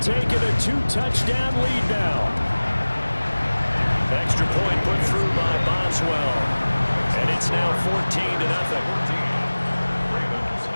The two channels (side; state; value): both; inverted; correlation -1.00